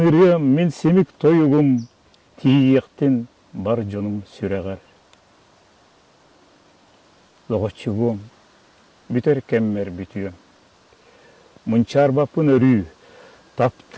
үрем, мен семік тойығым, тиектен бар жоным сүрәғар. Лоғычығым, бүтер кәммер бүтüем. Мұнчарбапын өрі,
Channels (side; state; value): both; identical; correlation 1.00